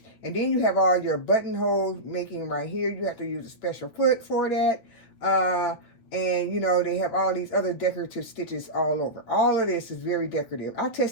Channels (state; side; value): late; right; 9.2 ms